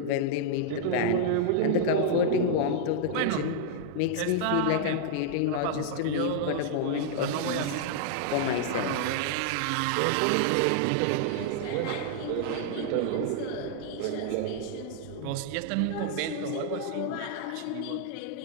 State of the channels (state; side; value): different; both; correlation -0.01